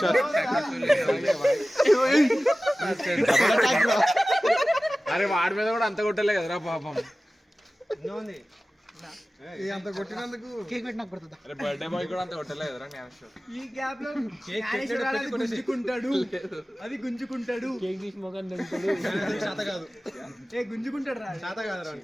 అరే వాడి మీద కూడా అంత కొట్టలే కదరా పాపం. అంత కొట్టినందుకు కేక్ పెట్టినాక పడుతుందా? అరే బర్త్డే బాయ్ కూడా అంత కొట్టలే కదరా జ్ఞానేశ్వర్. ఈ గ్యాప్ లో జ్ఞానేశ్వర్ అది గుంజుకుంటాడు. అది గుంజుకుంటాడు. కేక్ తీసి మొగన్ చేత కాదు, ఏ గుంజుకుంటాడు రా. చేత కాదు రా.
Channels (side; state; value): both; normal; correlation 0.96